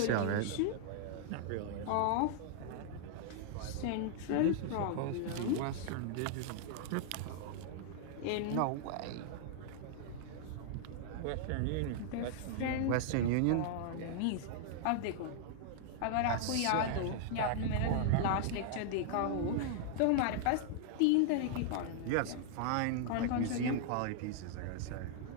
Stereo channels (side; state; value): both; different; correlation -0.01